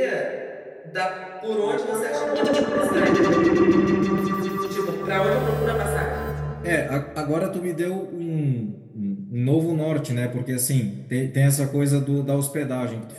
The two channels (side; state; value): both; identical; correlation 1.00